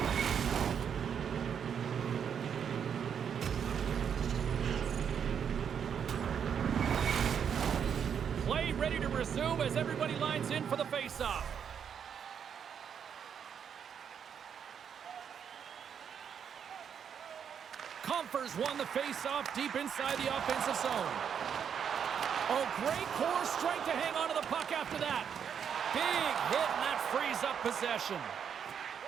Play ready to resume as everybody lines in for the face-off. Comfers won the face-off deep inside the offensive zone. Oh, great core strength to hang on to the puck after that. Big hit, and that frees up possession.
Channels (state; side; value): quieter; left; 7.8 dB